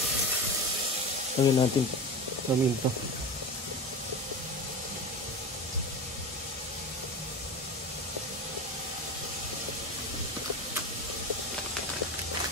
Lagyan natin paminta.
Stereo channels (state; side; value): normal; both; correlation 0.26